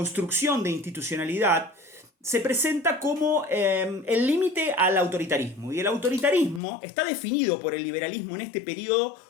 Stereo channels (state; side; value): drops out; right; at 6.6 s